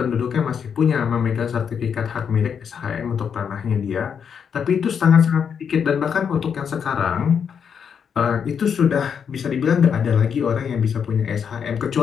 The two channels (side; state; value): right; quieter; 7.2 dB